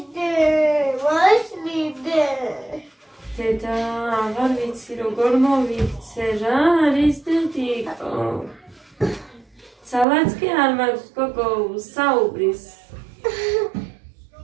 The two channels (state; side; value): drops out; left; at 10.1 s